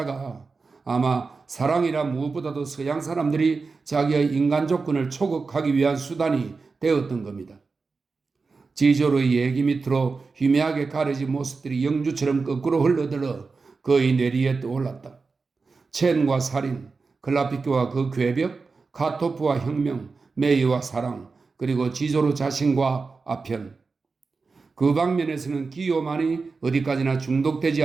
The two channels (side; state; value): left; quieter; 4.4 dB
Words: 아마 사랑이라 무엇보다도 서양 사람들이 자기의 인간 조건을 초극하기 위한 수단이 되었던 겁니다. 지조로의 얘기 밑으로 희미하게 가려진 모습들이 영주처럼 거꾸로 흘러들어 그의 뇌리에 떠올랐다. 첸과 살인, 클라피교와 그 괴벽, 카토프와 혁명, 메이와 사랑, 그리고 지조로 자신과 아편. 그 방면에서는 기요만이 어디까지나 중독되지